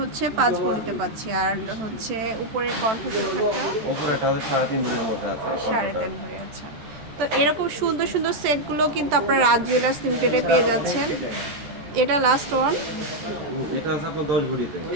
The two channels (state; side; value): late; left; 13 ms